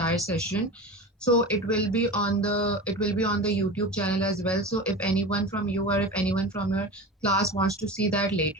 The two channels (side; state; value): both; normal; correlation 0.31